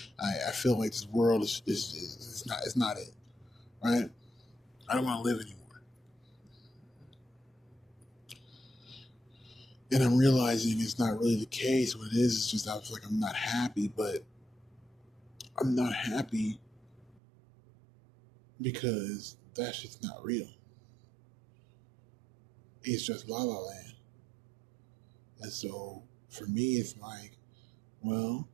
I feel like this world is not it. Right? I don't want to live anymore. And I'm realizing it's not really the case. What it is just I feel like I'm not happy, but I'm not happy because that shit's not real. It's just La La Land. And so for me, it's like, well,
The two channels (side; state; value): left; drops out; at 17.2 s